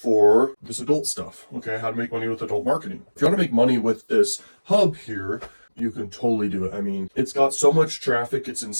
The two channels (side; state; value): both; inverted; correlation -1.00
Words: this adult stuff. Okay, how to make money with adult marketing. If you want to make money with this hub here, you can totally do it. I mean, it's got so much traffic, it's